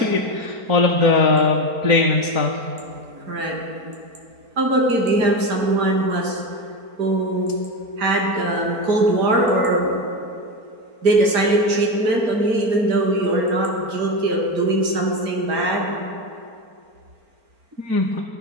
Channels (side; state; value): left; late; 4.4 ms